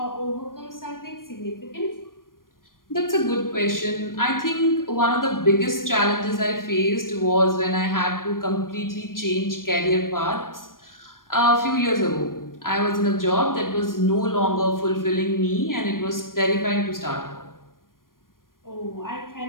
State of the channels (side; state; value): right; late; 0.91 ms